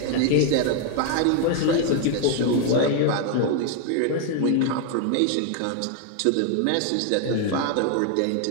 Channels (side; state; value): both; different; correlation 0.00